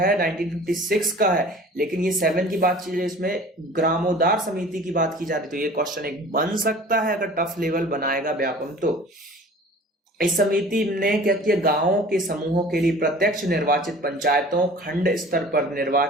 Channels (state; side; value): normal; both; correlation 0.44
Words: 1956 का है, लेकिन ये 7 की बात चल रही है, इसमें ग्रामोद्धार समिति की बात की जा रही है। तो ये क्वेश्चन एक बन सकता है अगर टफ लेवल बनाएगा व्यापम। तो इस समिति ने क्या किया, गांवों के समूहों के लिए प्रत्यक्ष निर्वाचित पंचायतों, खंड स्तर पर